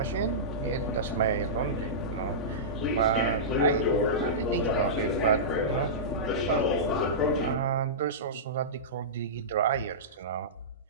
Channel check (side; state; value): both; normal; correlation -0.18